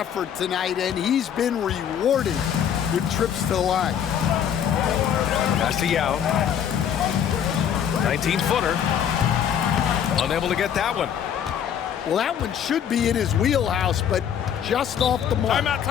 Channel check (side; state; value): right; quieter; 8.9 dB